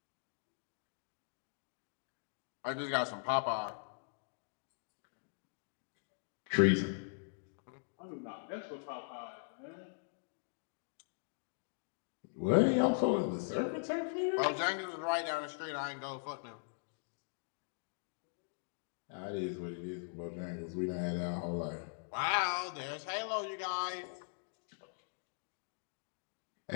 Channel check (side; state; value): right; silent; digital silence